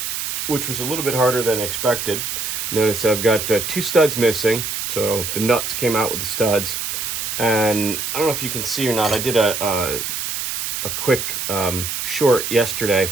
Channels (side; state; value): right; noise; hiss, 3 dB below the sound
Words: which was a little bit harder than expected. Notice I've got 2 studs missing, so the nuts came out with the studs. And I don't know if you can see or not, I did a quick short